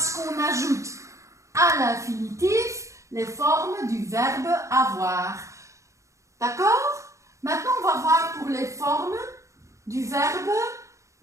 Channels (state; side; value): late; left; 0.15 ms